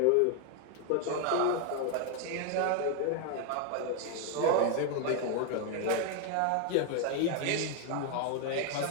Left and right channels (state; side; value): different; both; correlation 0.01